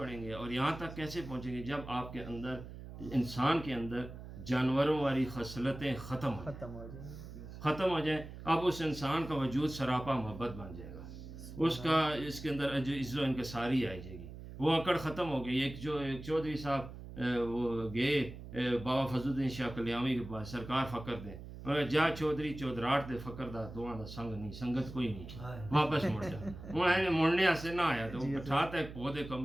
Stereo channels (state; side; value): noise; right; hum, 12 dB below the sound